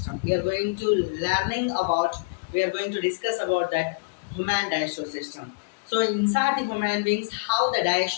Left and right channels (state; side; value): quieter; right; 31.6 dB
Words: We are going to discuss about that human digestive system. So inside the human beings, how the